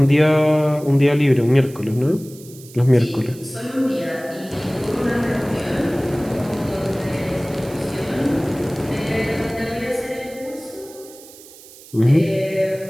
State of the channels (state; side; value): noise; right; hiss, 20 dB below the sound